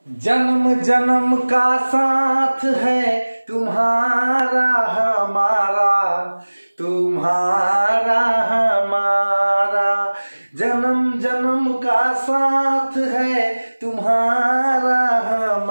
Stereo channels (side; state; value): both; inverted; correlation -1.00